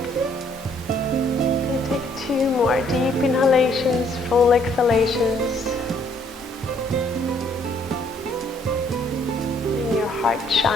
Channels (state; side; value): normal; both; correlation 0.65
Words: Two more deep inhalations, full exhalations. Letting your heart